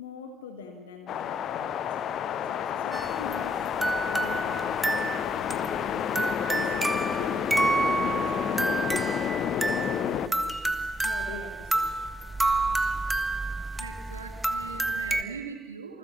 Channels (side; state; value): both; normal; correlation 0.76